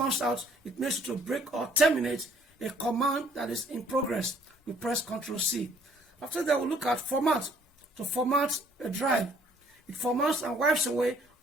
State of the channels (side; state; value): both; normal; correlation 0.61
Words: out, it makes you to break or terminate a command that is in progress. We press Control C. After that, we'll look at format. To format a drive, it formats and wipes away